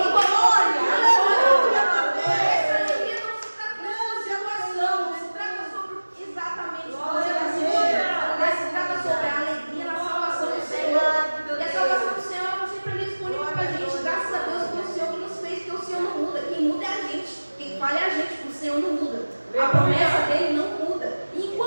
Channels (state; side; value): inverted; both; correlation -1.00